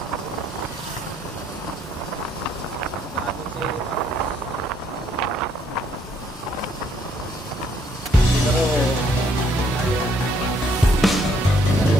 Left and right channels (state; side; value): normal; both; correlation 0.68